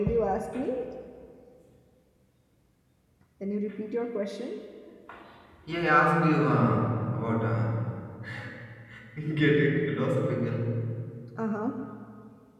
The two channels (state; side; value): identical; both; correlation 1.00